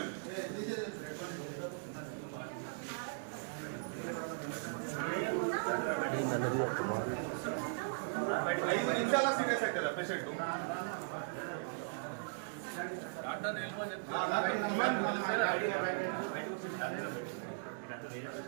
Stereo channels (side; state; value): left; silent; digital silence